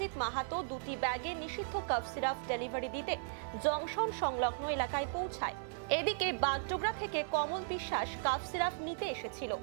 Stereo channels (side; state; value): left; silent; digital silence